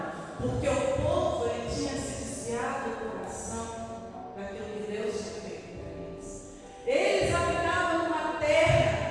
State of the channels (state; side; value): identical; both; correlation 1.00